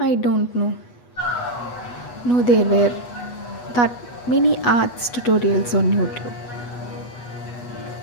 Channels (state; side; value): late; right; 8.2 ms